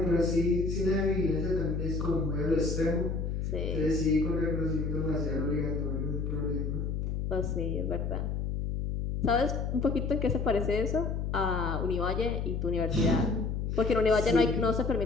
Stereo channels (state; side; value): noise; left; hum, 2 dB below the sound